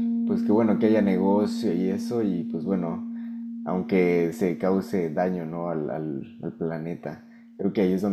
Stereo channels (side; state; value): both; identical; correlation 1.00